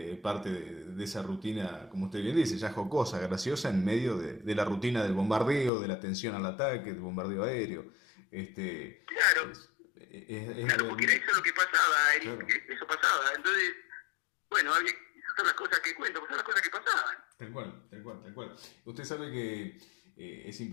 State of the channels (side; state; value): right; drops out; at 5.7 s